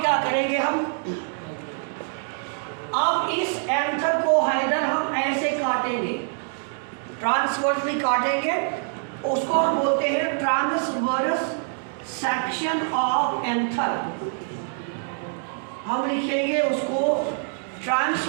क्या करेंगे हम, अब इस एंथर को हैदर हम ऐसे काटेंगे, ट्रांसवर्सली काटेंगे, उसको हम बोलते हैं ट्रांसवर्स सेक्शन ऑफ एंथर. हम लिखेंगे उसको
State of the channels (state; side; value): silent; left; 62 dB below the other